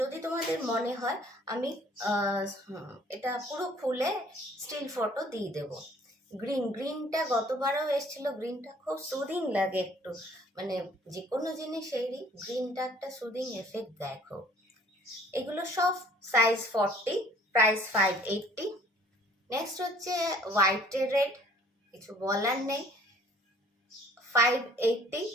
তোমাদের মনে হয় আমি এটা পুরো খুলে স্টিল ফটো দিয়ে দেবো। গ্রিনটা গতবারও এসেছিল, গ্রিনটা খুব সুদিং লাগে একটু, মানে যে কোনো জিনিসেরই গ্রিনটা একটা সুদিং এফেক্ট দেখো। এগুলো সব সাইজ 40, প্রাইস 580। নেক্সট হচ্ছে হোয়াইট রেড, কিছু বলার নেই, 580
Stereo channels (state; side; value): normal; both; correlation 0.56